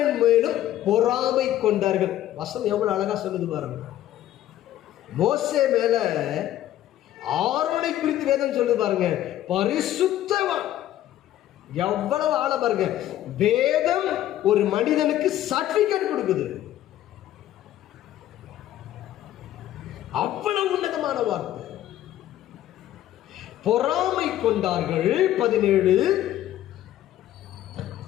மேலும் பொறாமை கொண்டார்கள். வசனம் எவ்வளவு அழகா சொல்லுது பாருங்க. மோசே மேல ஆரோனை குறித்து வேதம் சொல்லுது பாருங்க. பரிசுத்தவான். எவ்வளவு ஆழ பாருங்க. வேதம் ஒரு மனிதனுக்கு சர்டிபிகேட் கொடுக்குது. அவ்வளவு உன்னதமான வார்த்தை. பொறாமை கொண்டார்கள். 17.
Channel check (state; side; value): quieter; right; 13.0 dB